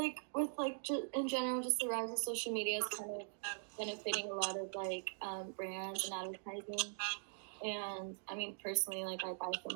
with like in general, just the rise of social media is kind of benefiting a lot of like brands and advertising. And I mean, personally, like I buy so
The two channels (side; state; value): left; silent; digital silence